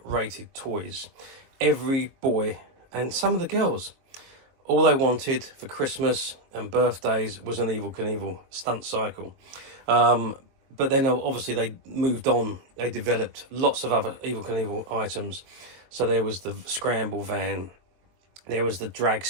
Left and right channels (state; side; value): late; left; 22 ms